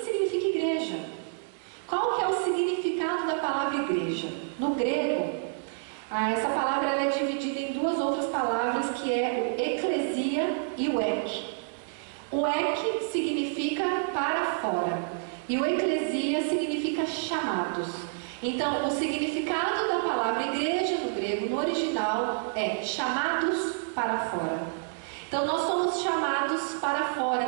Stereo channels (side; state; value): left; silent; digital silence